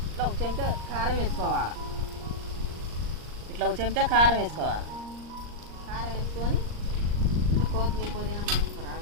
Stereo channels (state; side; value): late; left; 39 ms